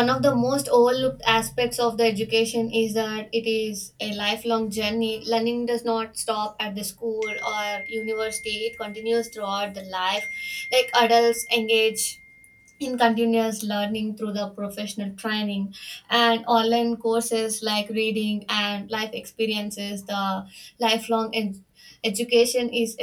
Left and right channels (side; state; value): both; identical; correlation 1.00